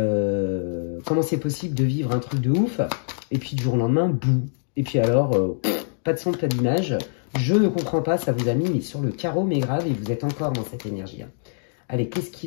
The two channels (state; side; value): silent; right; digital silence